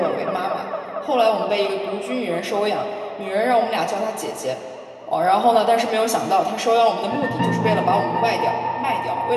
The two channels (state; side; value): identical; both; correlation 1.00